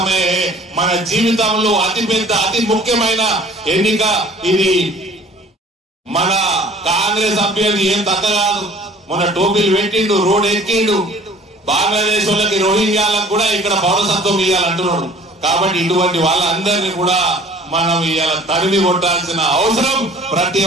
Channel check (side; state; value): both; normal; correlation 0.50